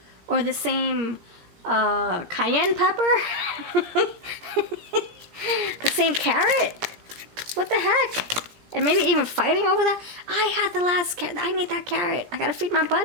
Or the same cayenne pepper? The same carrot? What the heck? And maybe even fighting over that? I had the last carrot. I need that carrot. I gotta feed my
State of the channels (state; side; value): late; left; 17 ms